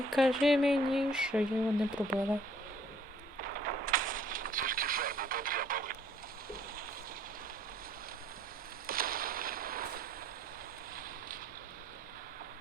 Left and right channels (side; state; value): both; normal; correlation 0.59